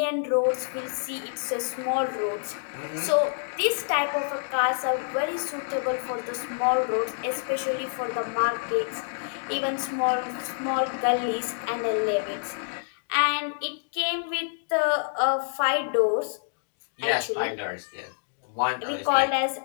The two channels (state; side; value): silent; right; digital silence